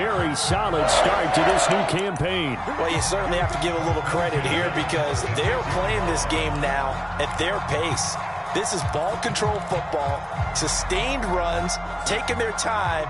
solid start to this new campaign. Well, you certainly have to give a little credit here because they're playing this game now at their pace. This is ball control football, sustained runs, taking their time,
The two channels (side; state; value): both; identical; correlation 1.00